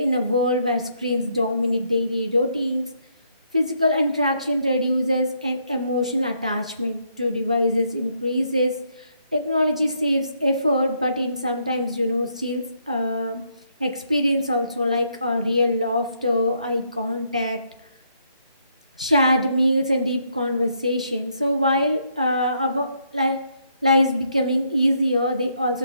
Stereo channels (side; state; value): both; inverted; correlation -0.73